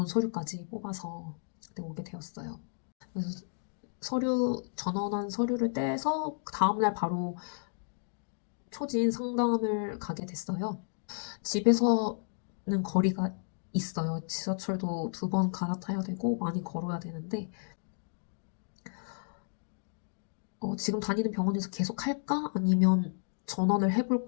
서류까지 뽑아서 그때 오게 되었어요. 그래서 전원한 서류를 떼서 그 다음날 바로 초진 상담을 가게 됐어요. 집에서는 거리가 있어요. 지하철도 2번 갈아타야 되고 많이 걸어야 되는데 지금 다니는 병원에서 계속 할까? 아니면 전원을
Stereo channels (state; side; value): silent; right; digital silence